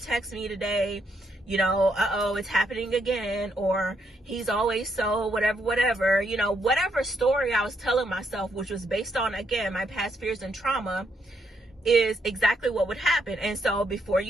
me today. You know, uh-oh, it's happening again. Or he's always so whatever, you know, whatever story I was telling myself, which was based on, again, my past fears and trauma, is exactly what would happen. And so before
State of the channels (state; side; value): normal; both; correlation 0.76